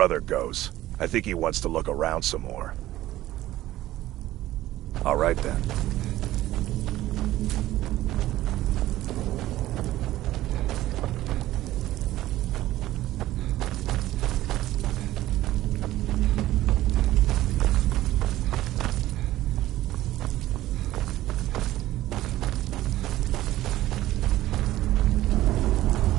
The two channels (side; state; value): left; quieter; 15.2 dB